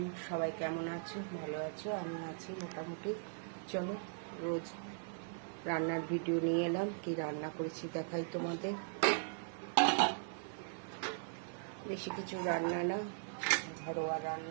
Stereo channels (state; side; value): silent; left; digital silence